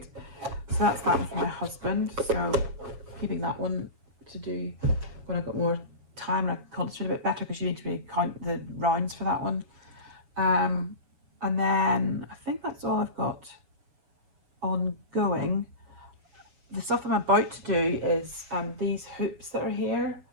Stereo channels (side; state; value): left; late; 7.1 ms